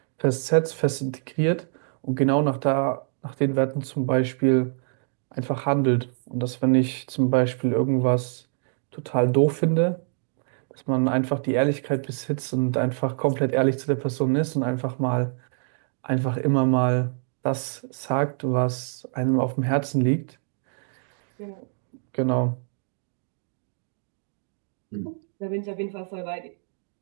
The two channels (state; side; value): silent; left; 61 dB below the other